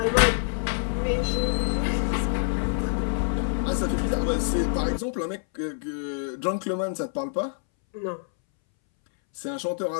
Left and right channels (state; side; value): silent; right; 61 dB below the other